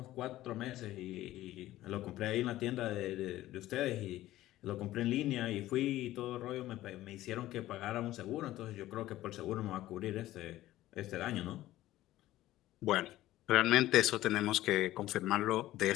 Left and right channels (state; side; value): quieter; right; 15.2 dB